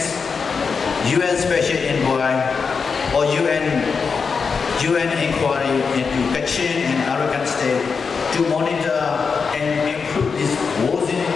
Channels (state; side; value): quieter; right; 5.4 dB